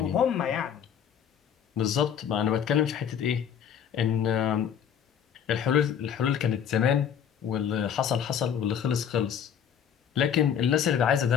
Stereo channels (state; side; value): quieter; right; 8.4 dB